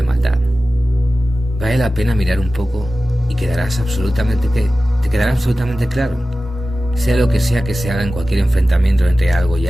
maldad. Vale la pena mirar un poco y te quedará absolutamente claro. Sea lo que sea que se haga en cualquier enfrentamiento entre algo y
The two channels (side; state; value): both; normal; correlation 0.95